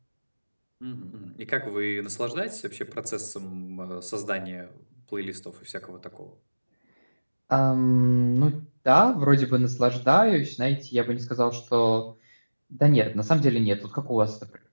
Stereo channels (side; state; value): both; inverted; correlation -1.00